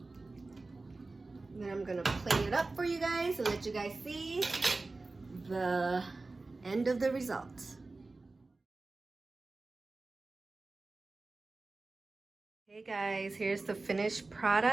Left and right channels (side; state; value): left; quieter; 3.4 dB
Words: Then I'm gonna plate it up for you guys and let you guys see the end of the result. Hey guys, here's the finished